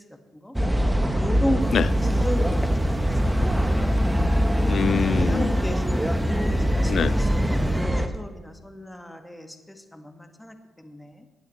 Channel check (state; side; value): normal; both; correlation 0.94